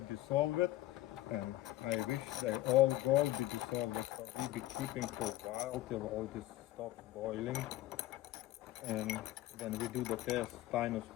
it, and I wish they all gold be dissolved. So we'll be keeping for a while till all this stops boiling. And then we do the test, styrene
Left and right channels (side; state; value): right; quieter; 15.5 dB